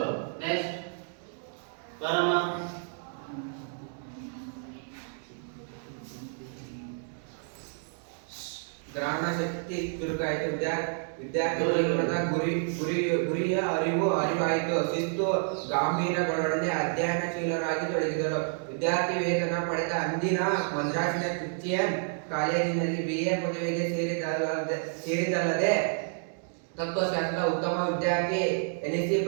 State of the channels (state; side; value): silent; left; 58 dB below the other